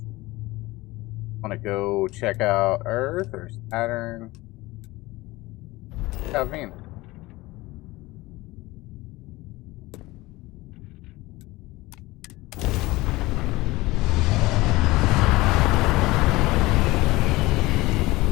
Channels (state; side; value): quieter; right; 20.2 dB